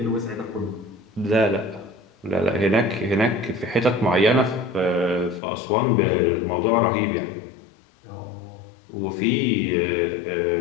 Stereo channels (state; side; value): drops out; right; at 5.4 s